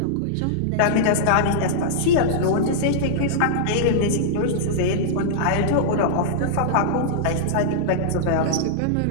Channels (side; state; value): both; different; correlation -0.02